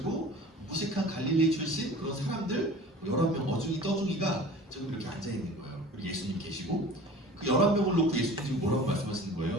무식한 갈릴리 출신 그런 사람들 11명 어중이 떠중이가 지금 이렇게 앉아있는 거예요. 그리고 예수님 계시고 그 11명을 놓고 예수님 지금 뭐라고 말씀하시는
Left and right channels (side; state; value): both; normal; correlation 0.42